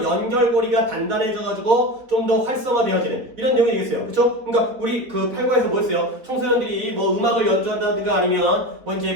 연결고리가 단단해져가지고 좀 더 활성화되어지는 이런 내용이겠어요. 그쵸? 그러니까 우리 그 8과에서 뭐였어요? 청소년들이 뭐 음악을 연주한다든가 아니면 뭐 이제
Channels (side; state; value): left; late; 4.1 ms